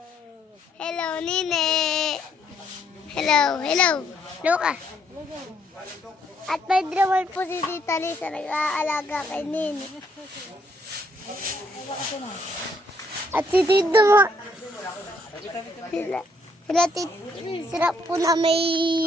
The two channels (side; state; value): both; normal; correlation 0.70